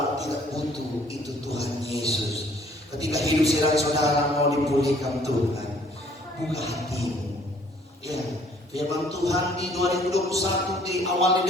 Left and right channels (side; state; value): both; normal; correlation 0.60